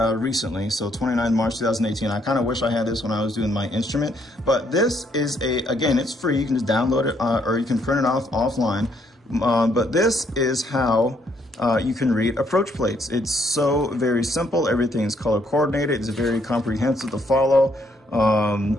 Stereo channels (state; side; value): normal; both; correlation 0.70